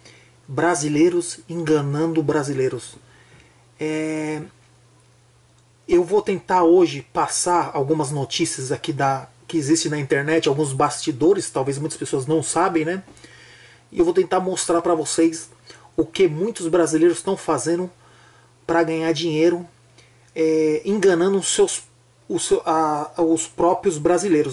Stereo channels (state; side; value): identical; both; correlation 1.00